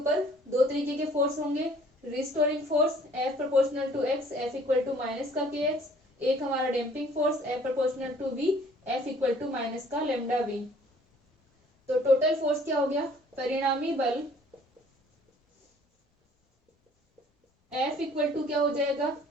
दो तरीके के फोर्स होंगे, restoring force F proportional to x, F equal to minus का kx, एक हमारा damping force F proportional to v, F equal to minus का लेमडा v। तो टोटल फोर्स क्या हो गया, परिणामी बल F इक्वल टू क्या हो जाएगा,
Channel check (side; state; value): both; normal; correlation 0.56